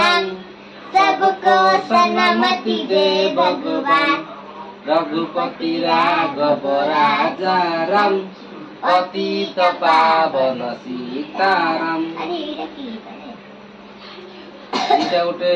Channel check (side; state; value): both; identical; correlation 1.00